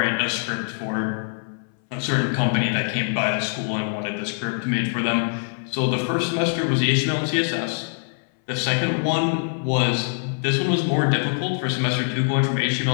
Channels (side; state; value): right; silent; 61 dB below the other